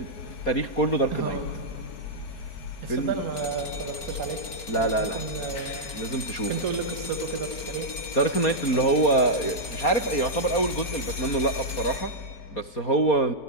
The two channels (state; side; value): late; right; 4.4 ms